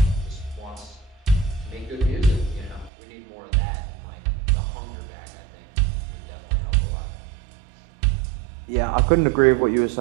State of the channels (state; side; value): drops out; left; at 2.9 s